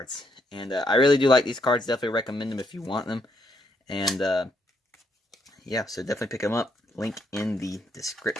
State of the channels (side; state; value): both; normal; correlation 0.75